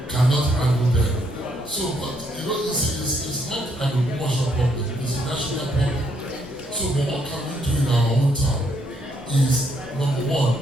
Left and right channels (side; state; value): both; normal; correlation 0.73